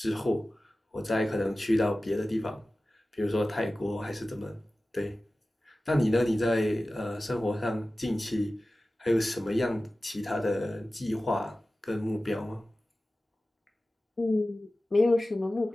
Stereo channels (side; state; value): both; normal; correlation 0.96